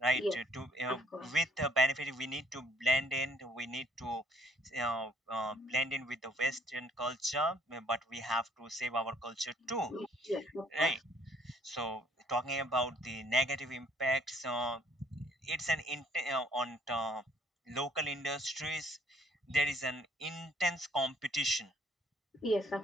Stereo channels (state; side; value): normal; both; correlation 0.63